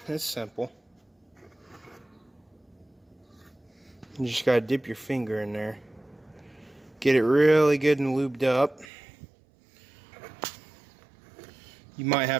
it's simple. You just gotta dip your finger in there. Get it really good and lubed up. You might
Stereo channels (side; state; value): left; drops out; at 8.8 s